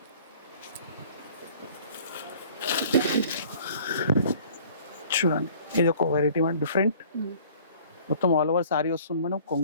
చూడండి ఇది ఒక వెరైటీ మేడం, డిఫరెంట్. మొత్తం ఆల్ ఓవర్ సారీ వస్తుంది మేడం,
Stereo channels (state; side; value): inverted; both; correlation -0.52